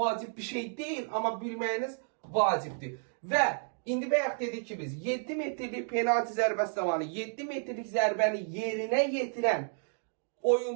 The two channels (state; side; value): silent; left; digital silence